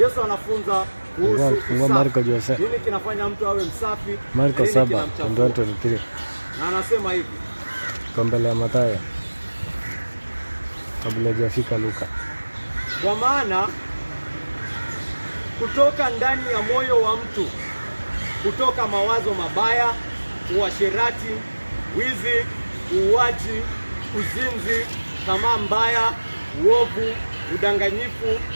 anafunza kuhusu Marko Jose. Nini kinafanya mtu awe msafi? Marko 7:23. Na anasema hivi. Kwa mbele ya Mathayo. Kabla hajafika Luka. Kwa maana kutoka ndani ya moyo wa mtu kutoka mawazo mabaya, uasherati, wizi, uuaji, uzinzi, tamaa mbaya, uovu, udanganyifu,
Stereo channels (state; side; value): inverted; both; correlation -1.00